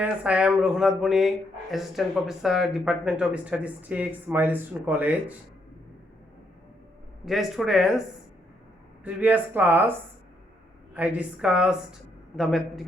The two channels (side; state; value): both; normal; correlation 0.75